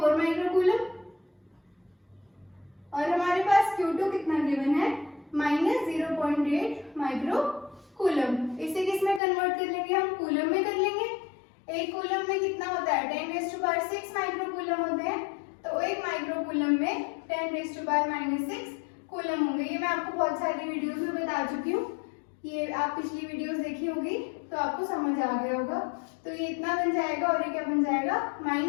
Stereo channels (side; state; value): right; drops out; at 9.2 s